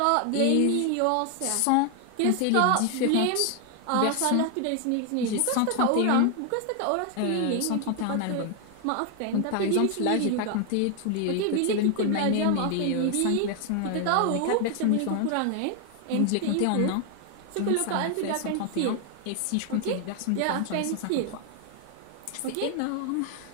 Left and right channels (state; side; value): different; both; correlation 0.00